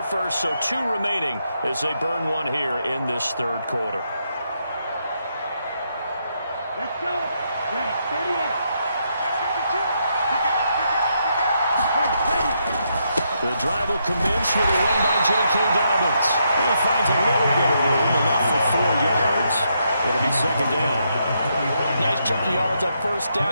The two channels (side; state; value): both; inverted; correlation -0.79